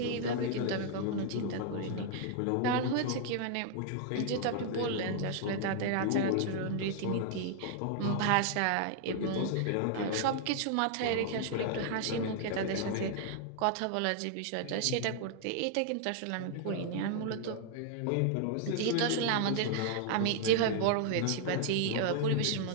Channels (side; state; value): both; different; correlation 0.00